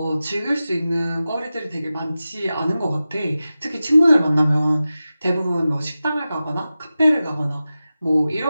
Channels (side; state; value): both; inverted; correlation -0.94